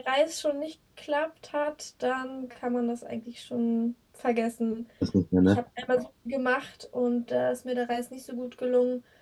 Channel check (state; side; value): identical; both; correlation 1.00